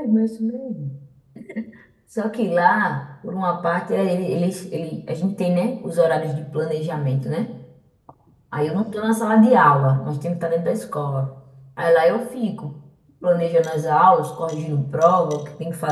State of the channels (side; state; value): both; identical; correlation 1.00